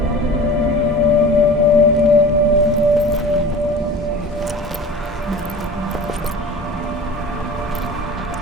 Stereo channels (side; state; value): both; normal; correlation 0.39